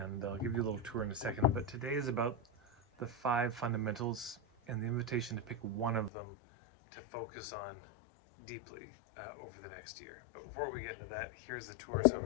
I'll give you a little tour in a second. But today is about the 5 fundamentals and the invitation to pick one of them to focus on deeply over the next year. But before we get into that, here's the tour. So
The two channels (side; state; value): right; drops out; at 6.1 s